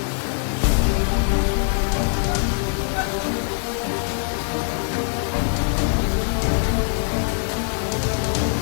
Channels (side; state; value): right; silent; 64 dB below the other